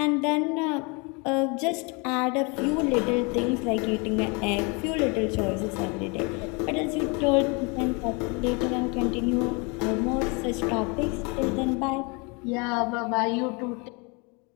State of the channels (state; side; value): quieter; right; 30.6 dB